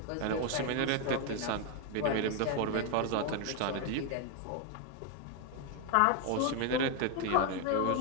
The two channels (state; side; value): different; both; correlation 0.01